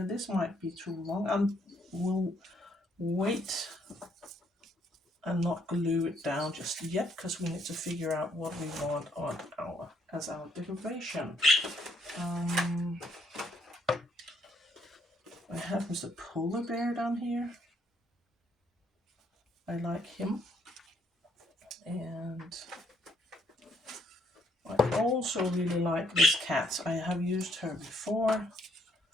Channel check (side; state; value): both; normal; correlation 0.70